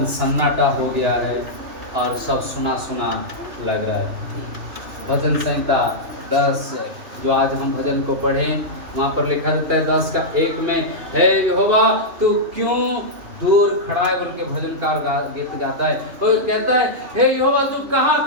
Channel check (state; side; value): late; left; 2.9 ms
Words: सन्नाटा हो गया है और सब सुना सुना लग रहा है। भजन संहिता 10 जो आज हम भजन को पढ़ें, वहाँ पर लिखा जाता है 10 का 1 में, हे यहोवा तू क्यों दूर खड़ा है, बोल के भजनकार गीत गाता है। तो कहता है हे यहोवा तू कहाँ